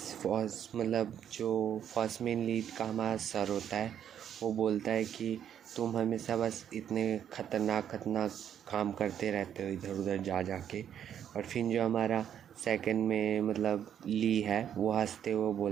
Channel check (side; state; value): left; quieter; 9.4 dB